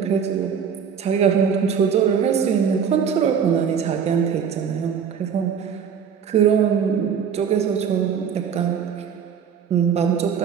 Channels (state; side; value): quieter; left; 7.2 dB